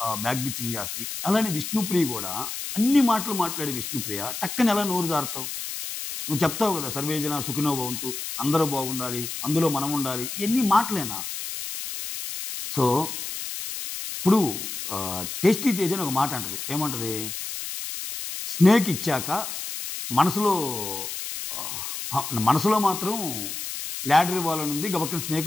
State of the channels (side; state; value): left; noise; hiss, 6 dB below the sound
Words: బ్యాక్ బిచ్చింగ్ చేస్తది. అలానే విష్ణుప్రియ కూడా అన్ని మాటలు మాట్లాడే విష్ణుప్రియ టక్కన ఎలా నోరు జారుతావు? నువ్వు చెప్తావు కదా! సర్వేజన సుఖినో భవంతు. అందరూ బాగుండాలి. అందులో మనం ఉండాలి. ఇయన్నీ మాటలేనా? సో, ఇప్పుడు టేస్టీ తేజ అని ఒక మాట అంటది. ఏమంటది? స్నేక్ ఇచ్చాక మనసులో మనసులో మాత్రం ల్యాడర్ ఇవ్వాలని ఉంది. గబక్కన స్నేక్